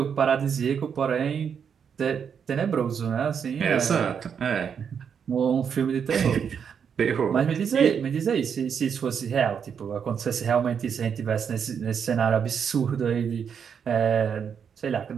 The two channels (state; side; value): quieter; left; 7.2 dB